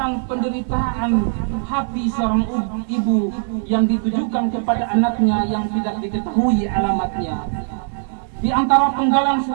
penderitaan hati seorang ibu yang ditujukan kepada anaknya yang tidak diketahui alamatnya. Di antara penggalan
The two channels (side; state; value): left; silent; digital silence